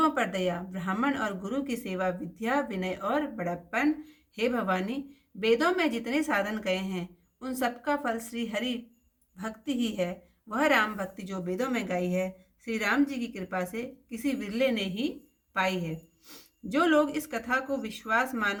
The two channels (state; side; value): identical; both; correlation 1.00